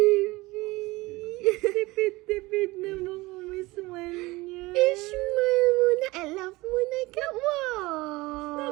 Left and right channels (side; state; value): left; quieter; 21.2 dB